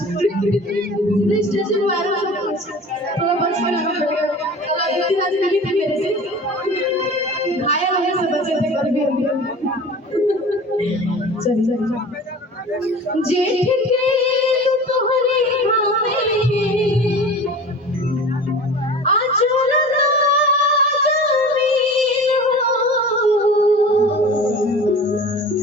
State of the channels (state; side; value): normal; both; correlation 0.39